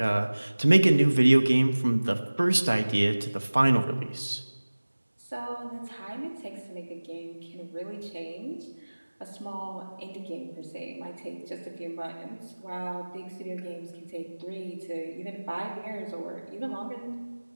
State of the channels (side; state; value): both; inverted; correlation -1.00